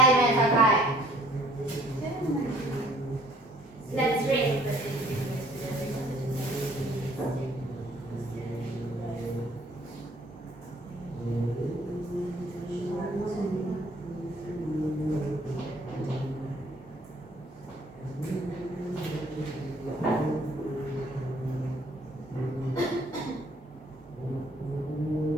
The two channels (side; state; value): both; normal; correlation 0.59